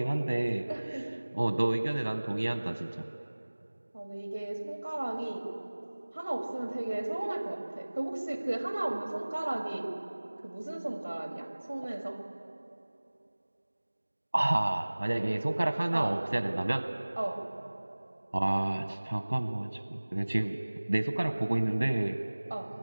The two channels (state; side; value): inverted; both; correlation -1.00